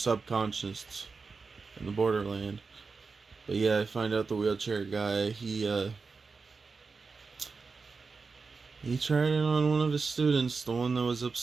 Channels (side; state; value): left; quieter; 4.6 dB